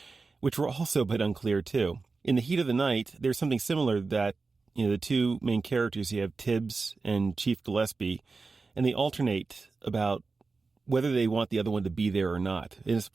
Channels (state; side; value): quieter; left; 4.1 dB